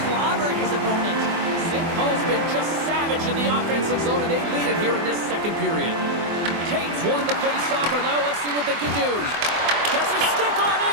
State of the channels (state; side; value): late; left; 24 ms